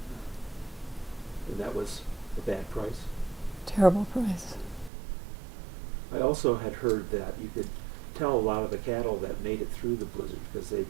And that was a bad price. Terrible price. I also had heard that you could tell a lot of the cattle that made it through the blizzard because they'd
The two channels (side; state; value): left; drops out; at 4.9 s